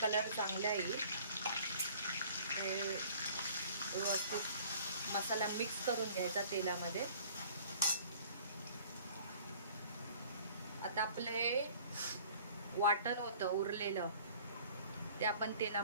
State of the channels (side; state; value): both; inverted; correlation -0.51